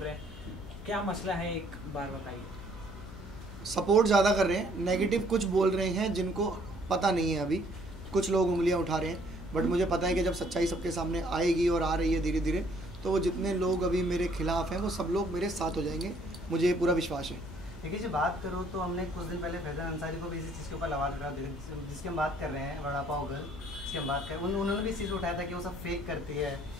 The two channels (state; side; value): noise; left; hum, 15 dB below the sound